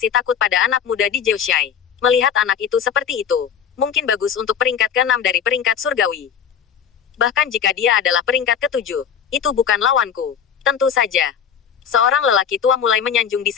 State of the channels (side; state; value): right; quieter; 7.9 dB